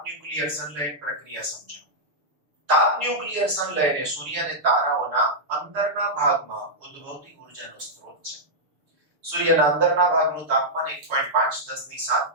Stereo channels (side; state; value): left; late; 6.8 ms